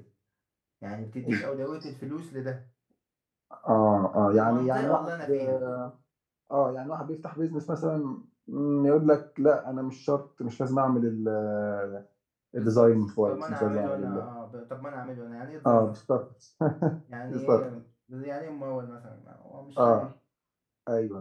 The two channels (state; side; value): identical; both; correlation 1.00